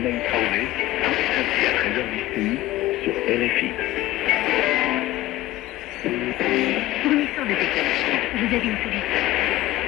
Traoré, tous les samedis à 13h d'ici, sur RFI. Fournisseur de technologie, vous avez une solution.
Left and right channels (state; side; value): quieter; right; 15.8 dB